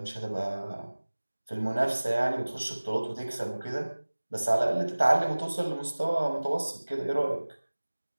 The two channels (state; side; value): inverted; both; correlation -1.00